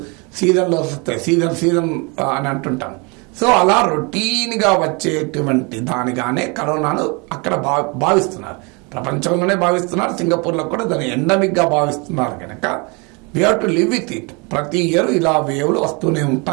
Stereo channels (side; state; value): left; quieter; 30.3 dB